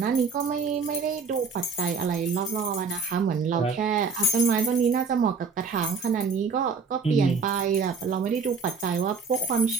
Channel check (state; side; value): quieter; left; 5.2 dB